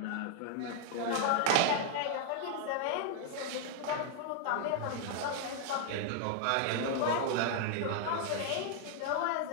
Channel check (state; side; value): different; both; correlation 0.00